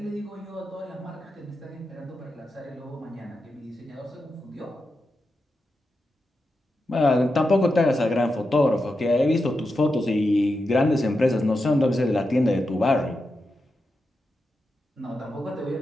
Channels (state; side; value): normal; both; correlation 0.88